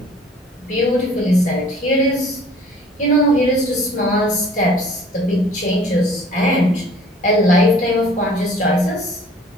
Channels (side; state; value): both; normal; correlation 0.52